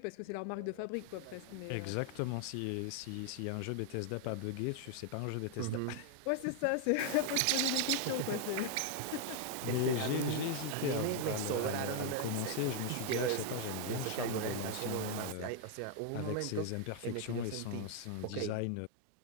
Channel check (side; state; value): both; different; correlation 0.01